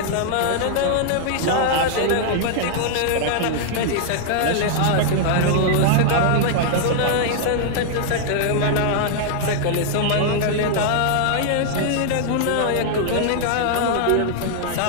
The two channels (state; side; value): different; both; correlation -0.01